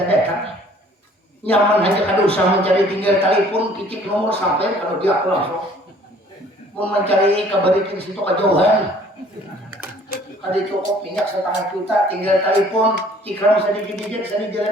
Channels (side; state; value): both; normal; correlation 0.55